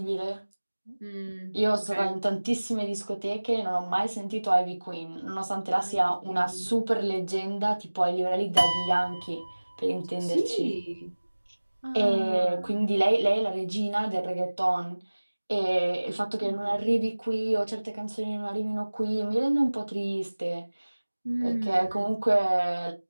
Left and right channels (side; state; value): both; inverted; correlation -1.00